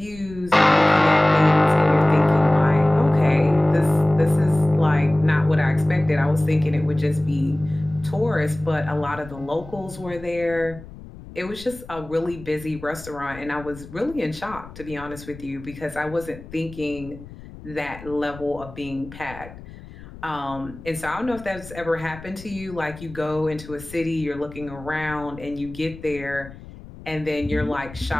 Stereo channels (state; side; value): noise; left; rumble, 17 dB below the sound